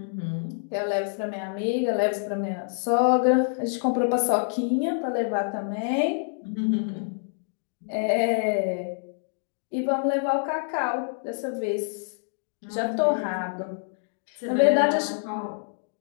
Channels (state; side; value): silent; right; digital silence